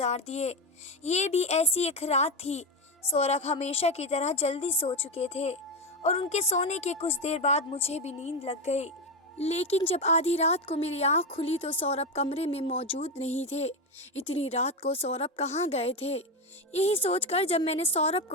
दिए। ये भी ऐसी एक रात थी सौरभ हमेशा की तरह जल्दी सो चुके थे और उनके सोने के कुछ देर बाद मुझे भी नींद लग गई। लेकिन जब आधी रात को मेरी आंख खुली तो सौरभ कमरे में मौजूद नहीं थे। इतनी रात को सौरभ कहाँ गए थे? यही सोचकर जब मैंने सौरभ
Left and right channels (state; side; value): normal; both; correlation 0.13